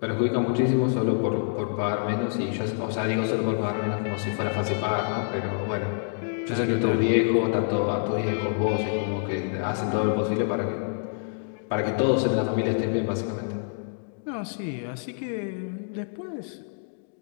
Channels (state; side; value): silent; right; digital silence